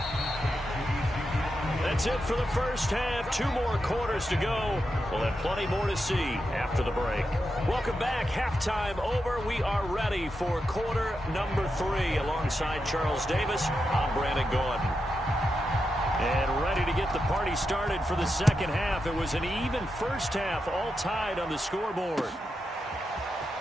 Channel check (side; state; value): both; normal; correlation 0.87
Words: That's it for the first half. 2 more quarters to go. We'll have plenty more to see after the break. Welcome back. Halftime over. We are ready for quarter number 3. Alongside Charles Davis, I'm Brandon Gordon. And ready to get the party started for the second half. It was an even first half, all tied on the scoreboard.